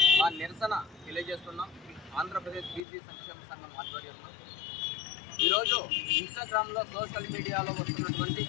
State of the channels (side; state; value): right; drops out; at 2.8 s